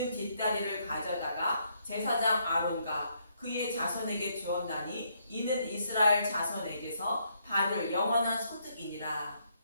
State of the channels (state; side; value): inverted; both; correlation -0.73